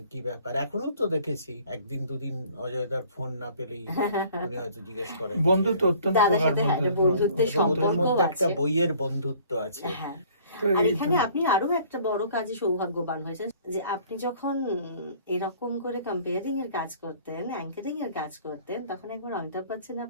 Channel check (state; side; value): inverted; both; correlation -0.54